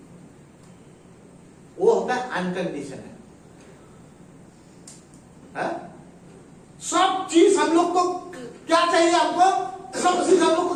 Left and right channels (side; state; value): both; identical; correlation 1.00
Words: वो होता है अनकंडीशनल। सब चीज हम लोग को क्या चाहिए, हमको सब चीज हम लोग को